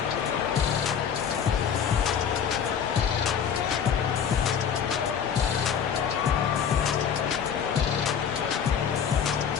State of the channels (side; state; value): right; quieter; 7.7 dB